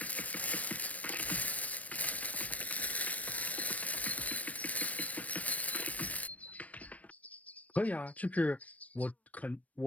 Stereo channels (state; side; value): late; right; 0.069 ms